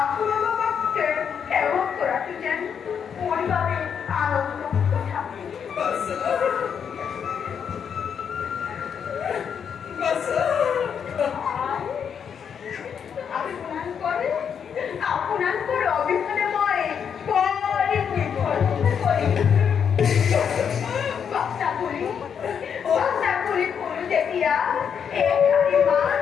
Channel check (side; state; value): right; quieter; 7.5 dB